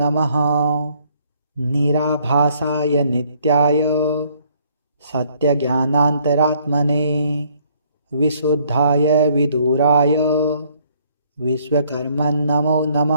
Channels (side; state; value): both; inverted; correlation -0.64